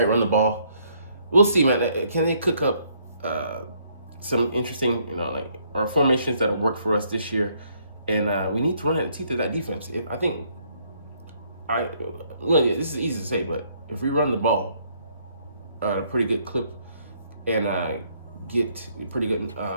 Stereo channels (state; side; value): inverted; both; correlation -0.68